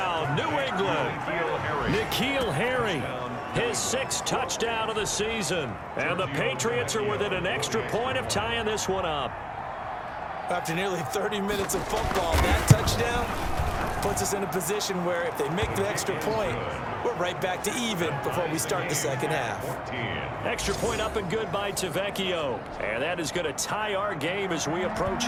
New England. N'Keal Harry, his 6th touchdown of the season. And the Patriots are within an extra point of tying this one up. After nearly 30 minutes of football, that touchdown puts us in a position where if they make the extra point, we're right back to even before we start the second half. Extra point up and good by Tavecchio. And that is going to tie our game as we approach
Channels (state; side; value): identical; both; correlation 1.00